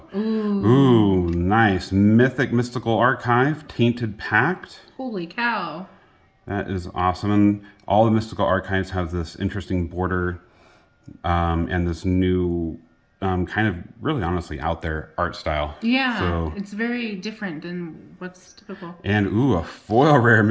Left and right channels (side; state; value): both; identical; correlation 1.00